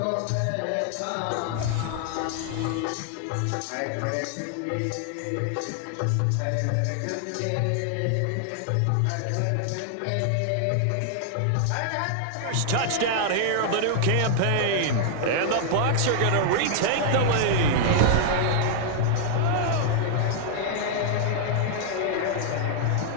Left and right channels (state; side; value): different; both; correlation -0.01